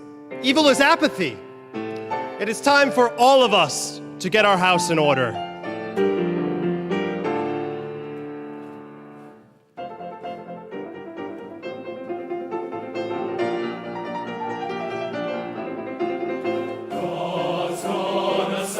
Evil is apathy. It is time for all of us to get our house in order.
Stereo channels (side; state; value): both; identical; correlation 1.00